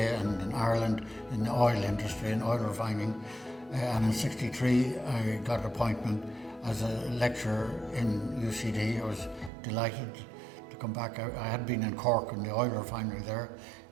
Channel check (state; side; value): drops out; left; at 9.5 s